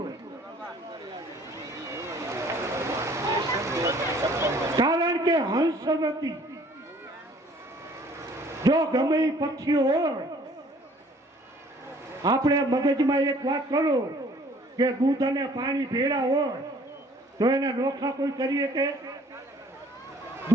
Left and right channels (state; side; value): normal; both; correlation 0.56